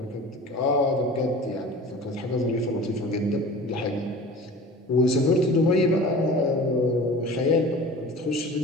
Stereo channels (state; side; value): normal; both; correlation 0.39